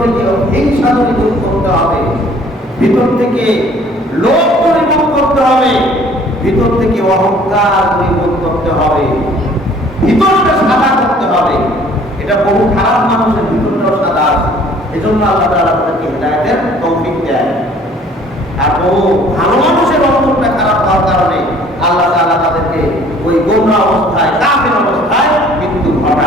থেকে হিংসা দূরীভূত করতে হবে, ভিতর থেকে লোভ দূরীভূত করতে হবে, ভিতর থেকে অহংকার দূরীভূত করতে হবে, ভিতরটা সাদা করতে হবে। এটা বহু খারাপ মানুষের ভিতরটাও সাদা আছে, এজন্য আল্লাহ তাআলা তাদেরকে হিদায়াতের তৌফিক দেন। আর বহু ভালো মানুষের অন্তরটা খারাপ হওয়ার কারণে আল্লাহ তাআলা তাদেরকে ওই গোমরা অবস্থায়, কাফের অবস্থায় মৃত্যু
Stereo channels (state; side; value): normal; both; correlation 0.55